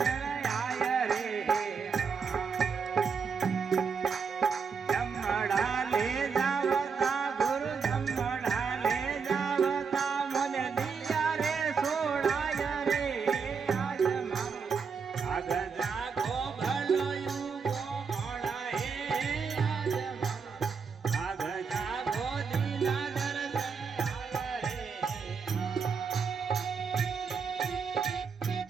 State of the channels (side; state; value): left; quieter; 5.7 dB